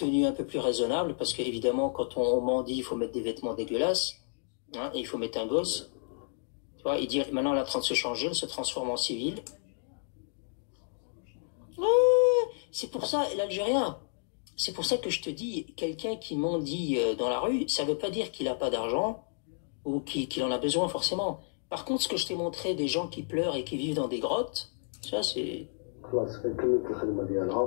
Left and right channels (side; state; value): right; silent; digital silence